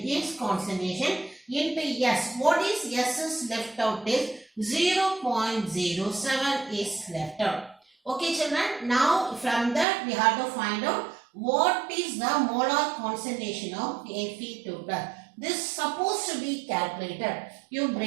its concentration into S. What is S is left out is 0.07 is left out. Okay children, now from that we have to find out what is the molar concentration of Fe2 plus. This is supposed to be calculated. You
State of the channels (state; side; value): drops out; left; at 9.9 s